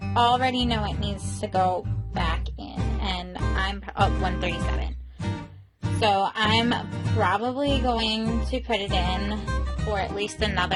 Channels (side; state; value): both; identical; correlation 1.00